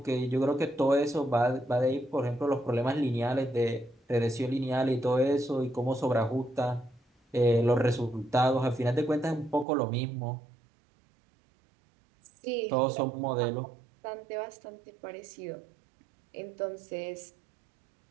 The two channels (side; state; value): left; drops out; at 9.7 s